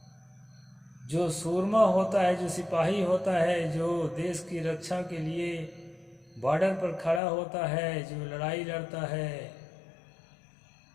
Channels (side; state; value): right; drops out; at 7.2 s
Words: जो सूरमा होता है, जो सिपाही होता है, जो देश की रक्षा के लिए बॉर्डर पर खड़ा होता है, जो लड़ाई लड़ता है,